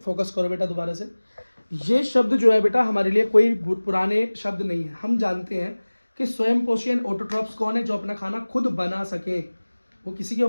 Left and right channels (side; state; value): both; inverted; correlation -1.00